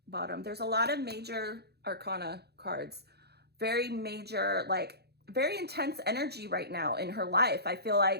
bottom. There's a lot of major arcana cards. Very major, like, very intense energy right now in her life. I feel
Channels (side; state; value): left; late; 0.47 ms